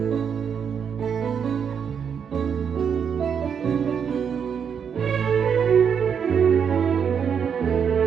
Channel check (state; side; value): quieter; left; 7.3 dB